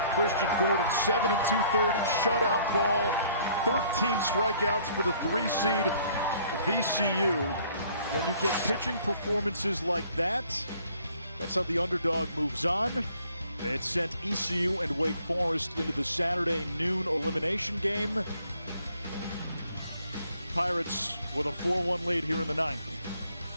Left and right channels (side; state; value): both; inverted; correlation -0.60